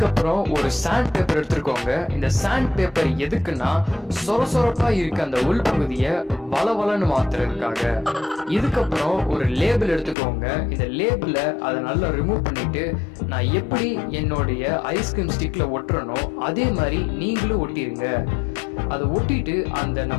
ஒரு சாண்ட் பேப்பர் எடுத்துக்கோங்க. இந்த சாண்ட் பேப்பர் எதுக்குன்னா சொரசொரப்பா இருக்க அந்த உள் பகுதியை வளவளன்னு மாத்துறதுக்காக. இதுக்கப்புறம் ஒரு லேபிள் எடுத்துக்கோங்க. இந்த லேபிள அதை நல்லா ரிமூவ் பண்ணிட்டு நான் எப்படி என்னுடைய ஐஸ்கிரீம் ஸ்டிக்ல ஒட்டுறனோ அதே மாதிரி நீங்களும் ஒட்டிருங்க. அதை ஒட்டிட்டு அந்த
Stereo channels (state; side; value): drops out; right; at 10.2 s